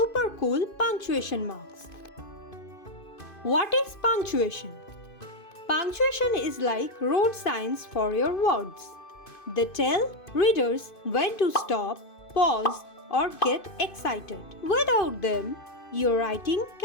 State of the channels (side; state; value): right; late; 2.5 ms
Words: cool punctuation marks. What is punctuation? Punctuation is like road signs for your words. They tell readers when to stop, pause, or get excited. Without them, your writing